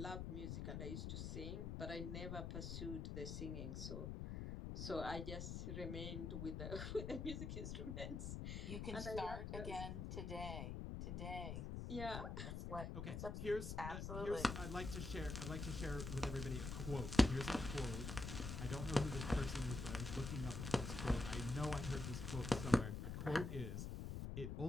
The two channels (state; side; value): noise; left; rumble, 4 dB below the sound